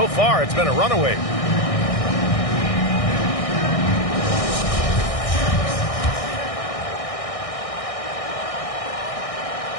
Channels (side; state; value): right; late; 1.6 ms